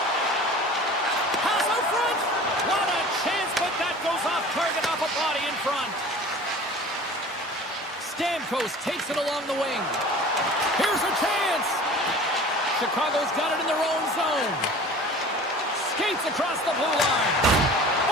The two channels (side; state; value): both; normal; correlation 0.42